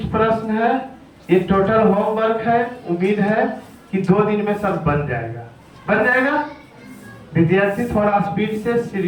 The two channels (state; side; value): identical; both; correlation 1.00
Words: प्रश्न है, ये टोटल होमवर्क है। उम्मीद है कि 2 दिन में सब बन जाएगा, बन जाएगा। विद्यार्थी थोड़ा स्पीड से,